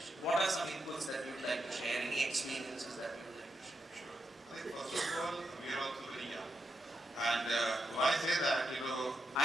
what are some inputs that you would like to share? Any experiences that you would like to share? Sure. I think first of all, we are also very young. And when I say that, we don't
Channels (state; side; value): normal; both; correlation 0.84